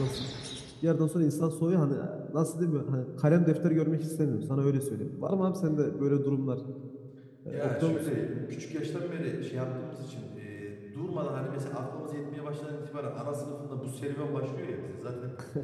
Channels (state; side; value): identical; both; correlation 1.00